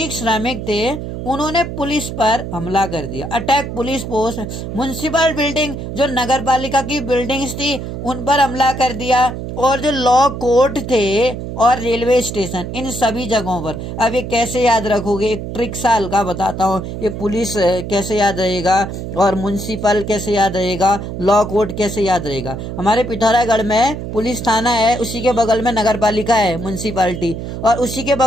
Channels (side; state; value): right; noise; hum, 7 dB below the sound